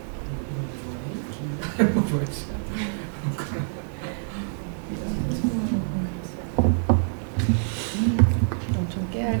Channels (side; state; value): left; silent; 61 dB below the other